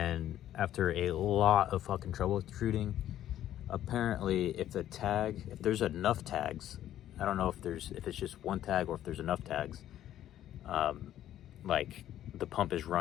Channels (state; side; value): quieter; right; 12.0 dB